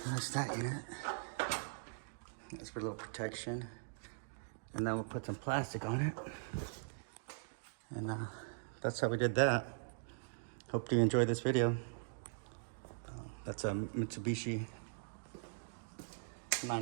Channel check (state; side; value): silent; left; digital silence